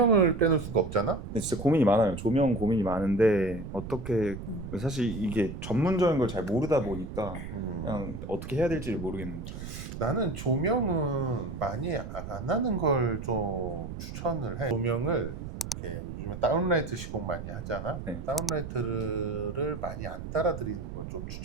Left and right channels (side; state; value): right; noise; rumble, 8 dB below the sound